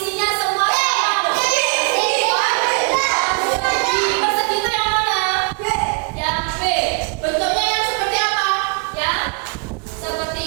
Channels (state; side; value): quieter; left; 38.4 dB